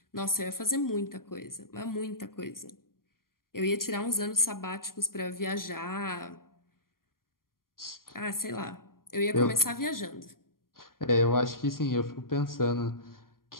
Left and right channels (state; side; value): late; right; 0.91 ms